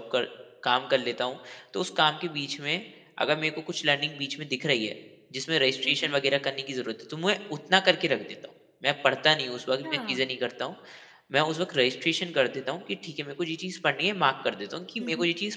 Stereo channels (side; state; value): both; identical; correlation 1.00